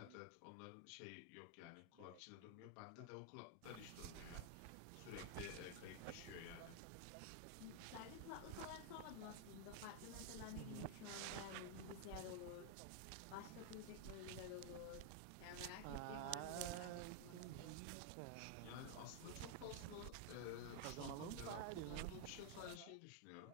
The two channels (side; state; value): both; different; correlation 0.00